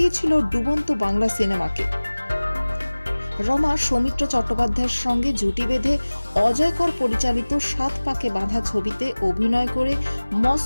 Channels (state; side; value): inverted; both; correlation -1.00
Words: ডুবন্ত বাংলা সিনেমাকে। রমা সৌমিত্র চট্টোপাধ্যায়ের সঙ্গে জুটি বেঁধে অজয়কর পরিচালিত 7 পাকে বাঁধা ছবিতে অভিনয় করে